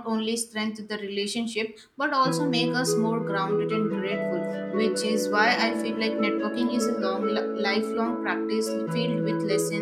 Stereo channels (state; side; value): identical; both; correlation 1.00